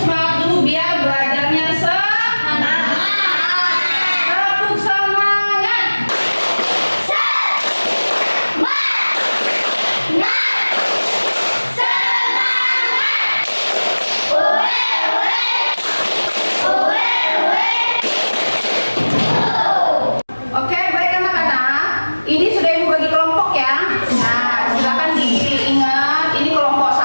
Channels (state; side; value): inverted; both; correlation -1.00